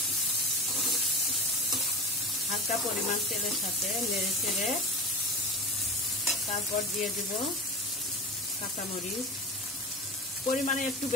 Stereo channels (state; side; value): normal; both; correlation 0.30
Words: হালকা পরিমাণ তেলের সাথে নেড়ে চেড়ে তারপর দিয়ে দিব কাঁচামরিচ, পরিমাণে একটু